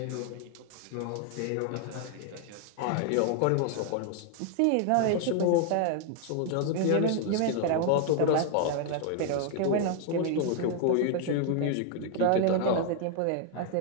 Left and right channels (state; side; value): different; both; correlation 0.00